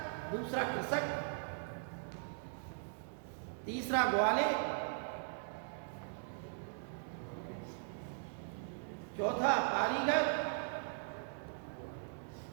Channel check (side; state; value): left; silent; digital silence